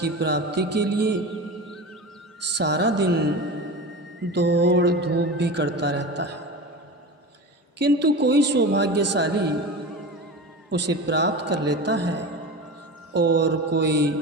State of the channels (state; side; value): normal; both; correlation 0.29